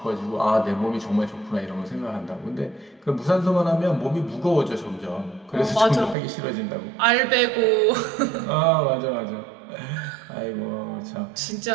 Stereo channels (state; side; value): drops out; left; at 6.2 s